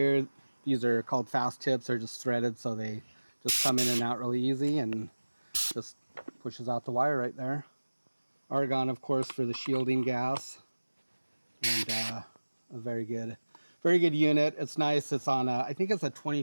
These are called fast tips. They're just threaded, so they just come in and out really easy, and just pushes out the wire right there. Argon, of course, for the shielding gas, and a very good unit. It's nice. It's on I think it's a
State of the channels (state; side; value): inverted; both; correlation -1.00